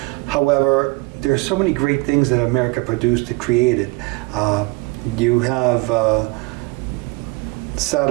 However, there are so many great things that America produced and created. You have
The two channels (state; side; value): quieter; left; 24.7 dB